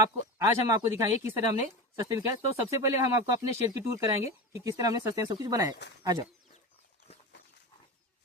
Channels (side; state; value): both; normal; correlation 0.25